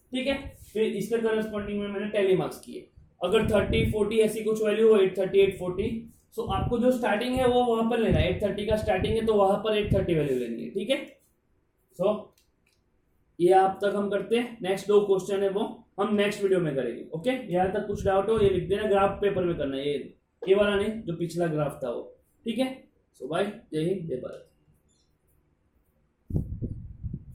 ठीक है। फिर इसके करस्पॉन्डिंग में मैंने टैली मार्क्स किए। अगर 30, 40 ऐसी कुछ वैल्यू हो, 830, 840, सो आपको जो स्टार्टिंग है वो वहां पर लेना है। 830 का स्टार्टिंग है तो वहां पर 830 वैल्यू लेनी है, ठीक है। सो ये आप तक हम करते हैं। नेक्स्ट 2 क्वेश्चन है वो हम नेक्स्ट वीडियो में करेंगे, ओके। यहाँ तक कुछ डाउट हो ये लिख देना, ग्राफ पेपर में करना है, ये वाला नहीं जो पिछला ग्राफ था वो, ठीक है। सो बाय, जय हिंद, जय भारत।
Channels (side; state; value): both; identical; correlation 1.00